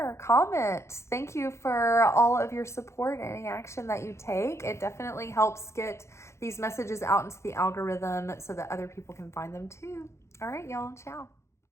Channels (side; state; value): right; late; 0.13 ms